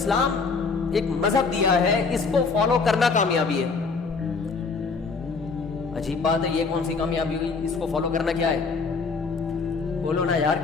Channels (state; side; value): quieter; right; 4.6 dB